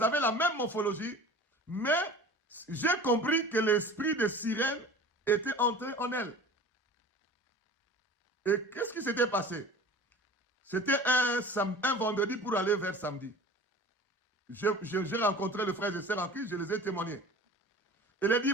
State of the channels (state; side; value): normal; both; correlation 0.41